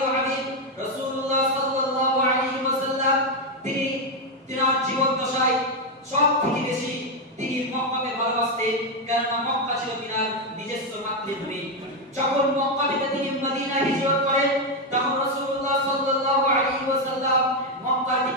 হাবিব রাসূলুল্লাহ সাল্লাল্লাহু আলাইহি ওয়াসাল্লাম তিনি তার জীবন দশায় সবথেকে বেশি তিনি মক্কাকে ভালোবাসতেন, কারণ মক্কা ছিল তার নিজস্ব মাতৃভূমি। যখন মক্কা থেকে তিনি মদিনায় হিজরত করেন তখন রাসূলুল্লাহ সাল্লাল্লাহু আলাইহি ওয়াসাল্লাম মক্কার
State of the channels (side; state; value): both; normal; correlation 0.05